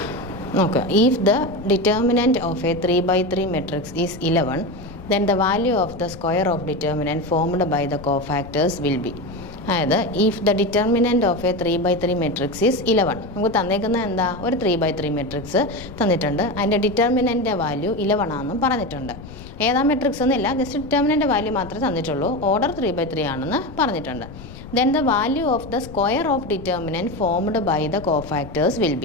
നോക്കുക, if the determinant of A 3x3 matrix is 11, then the value of the square of determinant formed by the cofactors will be. അതായത് if the determinant of A 3x3 matrix is 11, നമുക്ക് തന്നേക്കുന്നത് എന്താ, ഒരു 3x3 മെട്രിക്സ് തന്നിട്ടുണ്ട്. അതിൻ്റെ ഡിറ്റർമിനൻ്റെ വാല്യൂ 11 ആണെന്നും പറഞ്ഞിട്ടുണ്ട്. ഏതാ മെട്രിക്സ് എന്നില്ല, ജസ്റ്റ് ഡിറ്റർമിനൻ്റെ വാല്യൂ മാത്രമേ തന്നിട്ടുള്ളൂ. ഓർഡർ 3x3 ആണെന്ന് പറഞ്ഞിട്ടുണ്ട്. Then the value of the square of determinant formed by the cofactors will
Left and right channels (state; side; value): noise; left; rumble, 15 dB below the sound